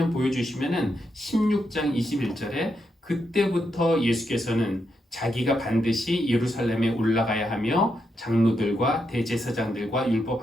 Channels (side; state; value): both; normal; correlation 0.82